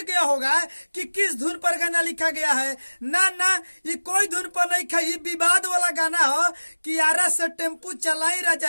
गया होगा कि किस धुन पर गाना लिखा गया है। ना ना, ये कोई धुन पर नहीं खा, ये विवाद वाला गाना हो कि आरा से टेम्पू चलाई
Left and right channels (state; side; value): inverted; both; correlation -1.00